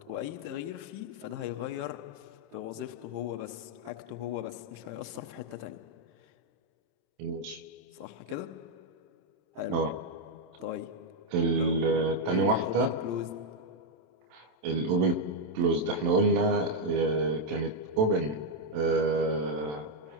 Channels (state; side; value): late; left; 27 ms